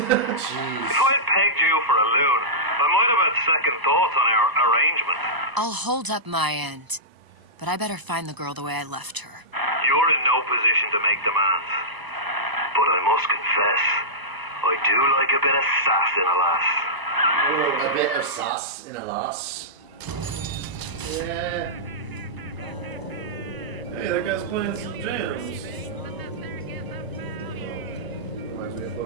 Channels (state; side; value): late; left; 1.0 ms